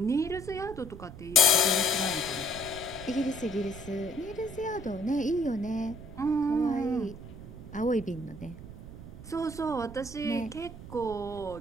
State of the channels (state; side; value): noise; right; rumble, 13 dB below the sound